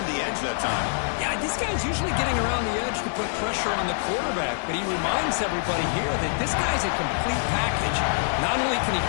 the edge that time. Yeah, this guy's usually getting around the edge to put pressure on the quarterback, but he reminds everybody here that this guy's a complete package. Not only can he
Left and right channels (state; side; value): silent; right; digital silence